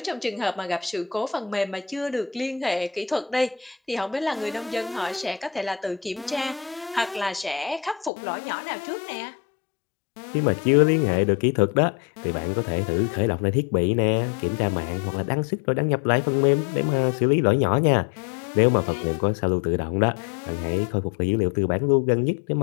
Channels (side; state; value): right; drops out; at 8.1 s